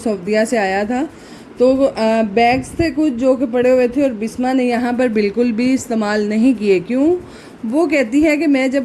से आया था। तो बैग्स थे कुछ जो कि पड़े हुए थे और बिस्मा ने यहाँ पर बिल्कुल भी इस्तेमाल नहीं किए। क्यों? वो कहती है कि मैं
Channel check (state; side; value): identical; both; correlation 1.00